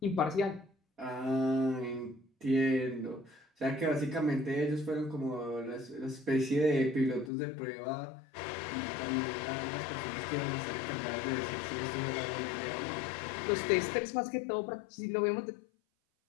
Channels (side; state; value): right; drops out; at 7.3 s